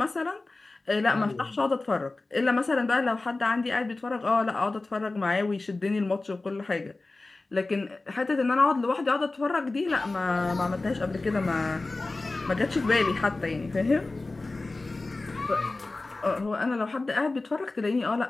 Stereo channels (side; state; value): right; quieter; 3.3 dB